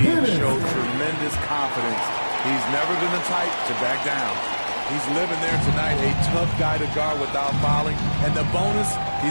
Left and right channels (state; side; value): inverted; both; correlation -1.00